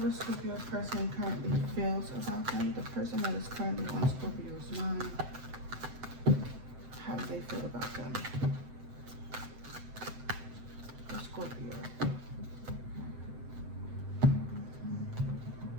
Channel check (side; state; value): left; late; 7.8 ms